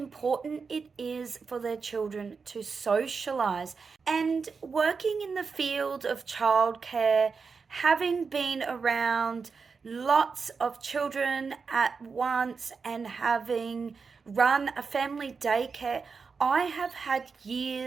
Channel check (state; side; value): quieter; left; 5.1 dB